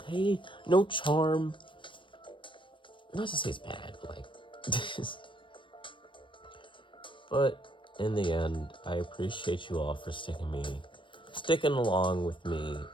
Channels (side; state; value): right; late; 0.24 ms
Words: No charm. Not to say it's bad, but, like... But, in the end, I appreciate you all for sticking along with me